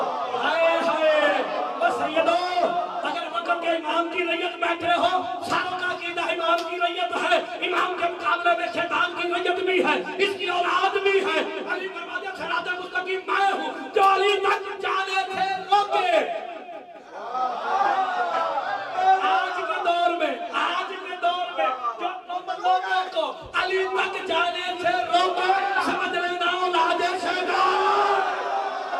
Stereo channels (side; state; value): both; identical; correlation 1.00